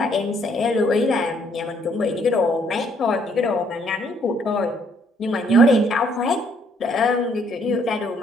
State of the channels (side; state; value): both; normal; correlation 0.66